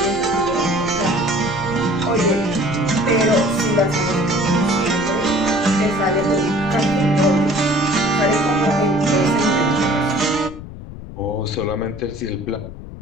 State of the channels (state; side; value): noise; left; rumble, 13 dB below the sound